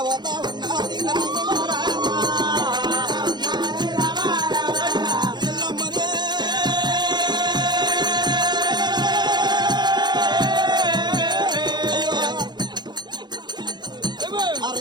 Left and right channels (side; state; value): left; late; 0.21 ms